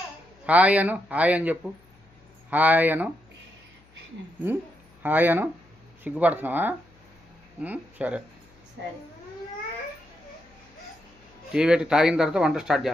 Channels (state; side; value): noise; left; hum, 30 dB below the sound